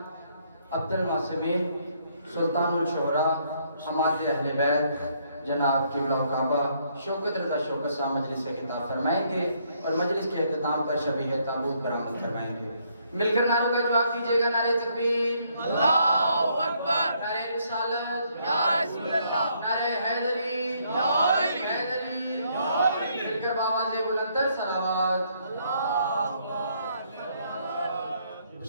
عبد المعصمین سلطان الشعراء حماد اہل بیت جناب قبلہ کعبہ شوکت رضا شوکت صاحب مجلس سے خطاب فرمائیں گے اور مجلس کے اختتام پر شبیہ تابوت برآمد کروائیں گے۔ مل کر نعروں کا جواب دیجیے گا۔ نعرہ تکبیر، اللہ اکبر، نعرہ رسالت، یا رسول اللہ، نعرہ حیدری، حیدری، مل کر بآواز بلندتر صلوات۔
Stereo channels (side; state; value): both; inverted; correlation -0.70